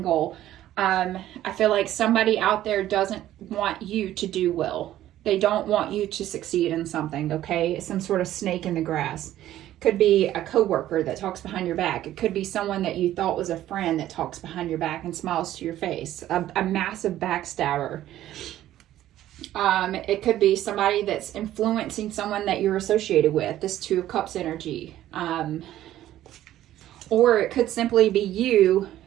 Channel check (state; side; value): quieter; left; 13.2 dB